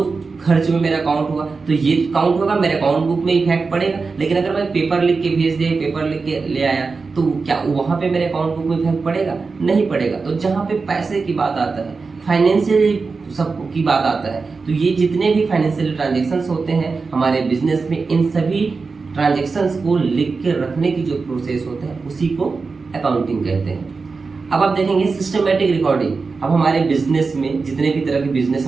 खर्च में मेरा अकाउंट हुआ। तो ये काउंट होगा, मेरे अकाउंट बुक में इफेक्ट पड़ेगा। लेकिन अगर मैं पेपर लिख के भेज दिया, पेपर लिख के ले आया, तो क्या वहां पे मेरे अकाउंट बुक में इफेक्ट पड़ेगा? नहीं पड़ेगा। तो जहां पे पैसे की बात आता है, फाइनेंशियल सब की बात आता है, तो ये जितने भी फाइनेंशियल ट्रांजेक्शन्स होते हैं हमारे बिजनेस में, इन सभी ट्रांजेक्शन्स को लिख के रखने की जो प्रोसेस होता है उसी को अकाउंटिंग कहते हैं। अब आप देखेंगे सिस्टमेटिक रिकॉर्डिंग। अब हमारे बिजनेस में जितने भी तरह के बिजनेस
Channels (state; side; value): quieter; left; 4.4 dB